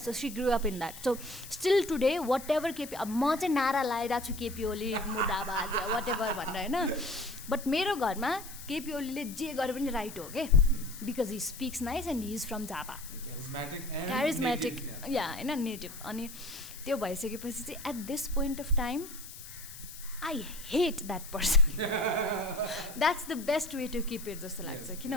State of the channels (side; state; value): left; noise; hiss, 14 dB below the sound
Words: she grew up in that. So still today whatever म चाहिँ नारा लगाइरहेको छु KP Oli मुर्दाबाद वाट एभर भनेर हैन. बट मेरो घरमा KP Oliले जे गरे पनि राइट हो के, because he speaks nice and he is from Jhapa. Charismatic yeah हैन, नेटिभ. अनि त्यो भइसकेपछि चाहिँ at this point of time I hate that person. That's the best way to keep it जस्तो लाग्छ.